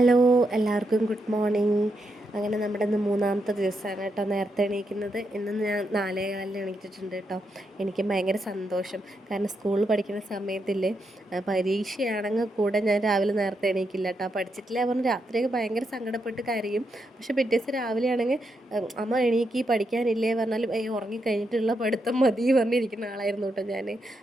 എല്ലാവർക്കും ഗുഡ് മോർണിംഗ്. അങ്ങനെ നമ്മുടെ ഇന്ന് മൂന്നാമത്തെ ദിവസമാണ് കേട്ടോ നേരത്തെ എണീക്കുന്നത്. ഇന്ന് ഞാൻ 4:15 എണീറ്റിട്ടുണ്ട് കേട്ടോ. എനിക്ക് ഭയങ്കര സന്തോഷം. കാരണം സ്കൂളിൽ പഠിക്കുന്ന സമയത്തില്ലേ, പരീക്ഷയാണെങ്കിൽ കൂടെ ഞാൻ രാവിലെ നേരത്തെ എണീക്കില്ല കേട്ടോ. പഠിച്ചിട്ടില്ല പറഞ്ഞ് രാത്രിയൊക്കെ ഭയങ്കര സങ്കടപ്പെട്ട് കരയും. പക്ഷെ പിറ്റേ ദിവസം രാവിലെ ആണെങ്കിൽ അമ്മ എണീക്കി പഠിക്കാനില്ലേ പറഞ്ഞാലും ഉറങ്ങിക്കഴിഞ്ഞിട്ടുള്ള പഠിത്തം മതി പറഞ്ഞിരിക്കുന്ന ആളായിരുന്നു കേട്ടോ ഞാൻ.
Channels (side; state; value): both; normal; correlation 0.82